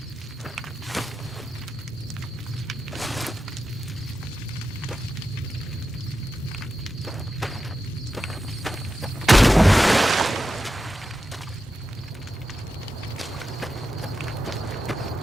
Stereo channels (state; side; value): normal; both; correlation 0.91